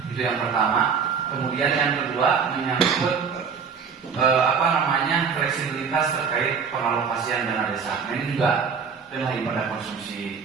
Itu yang pertama. Kemudian yang kedua menyangkut fleksibilitas terkait pengalokasian dana desa. Nah, ini juga pada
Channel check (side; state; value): left; quieter; 6.1 dB